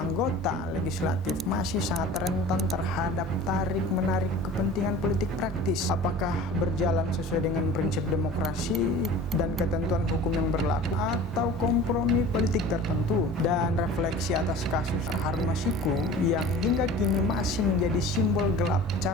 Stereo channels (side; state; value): both; normal; correlation 0.41